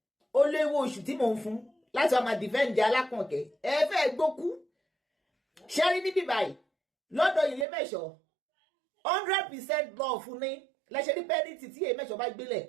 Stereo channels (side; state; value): left; drops out; at 7.7 s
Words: ó léwó oṣù tí mò ń fún láti ọmọ dìfẹ́ǹdì alákànkẹ́ ẹ fẹ́ gbókú ṣẹ́rí níbí báyìí lọ́dọ̀ ilé mẹ́ṣọ́ 100% love fún ní lẹ́ṣẹ̀ ní pẹ́ẹ́nìtì tí èyí mẹ́ṣọ́ bá gbélẹ̀